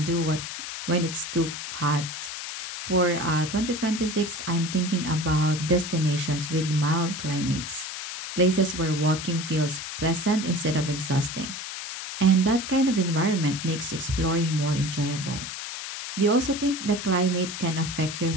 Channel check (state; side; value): noise; left; hiss, 7 dB below the sound